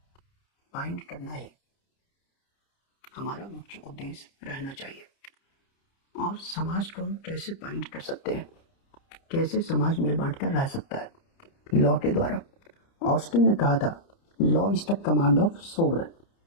बाइंड करना ही हमारा मुख्य उद्देश्य रहना चाहिए। और समाज को हम कैसे बाइंड कर सकते हैं, कैसे समाज मिल बांट कर रह सकता है? लॉ के द्वारा। ऑस्टिन ने कहा था, law is the command of sovereign.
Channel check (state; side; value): late; right; 30 ms